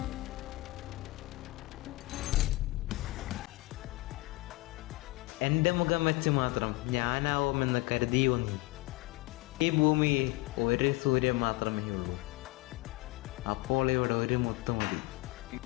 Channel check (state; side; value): quieter; right; 21.3 dB